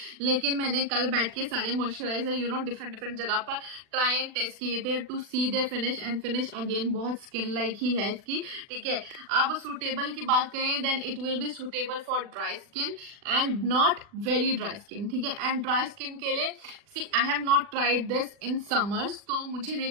लेकिन मैंने कल बैठ के सारे मॉइस्चराइजर डिफरेंट डिफरेंट जगह पर ट्राई एंड टेस्ट किए थे to see their finish. And finish again बहुत स्किन लाइक ही है इसकी, ठीक है। अब सूटेबल की बात करें then it will be suitable for dry skin and not very dry skin, ठीक है। एंड ड्राई स्किन के लिए see I have not tried this in summers, तो मुझे नहीं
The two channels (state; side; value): late; left; 40 ms